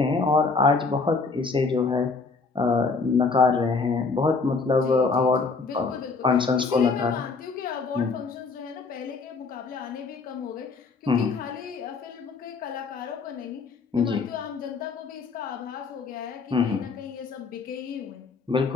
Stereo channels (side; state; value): right; quieter; 4.3 dB